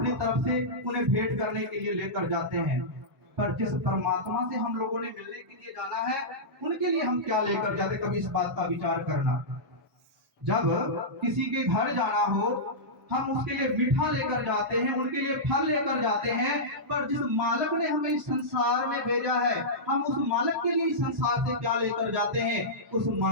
तरफ से उन्हें भेंट करने के लिए लेकर जाते हैं। पर जिस परमात्मा से हम लोगों ने मिलने के लिए जाना है, उनके लिए हम क्या लेकर जाते, कभी इस बात का विचार करना। जब किसी के घर जाना हो, हम उसके लिए मीठा लेकर जाते हैं, उनके लिए फल लेकर जाते हैं। पर जिस मालिक ने हमें इस संसार में भेजा है, हम उस मालिक के लिए इस संसार से क्या लेकर जाते हैं, उस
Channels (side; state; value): both; normal; correlation -0.13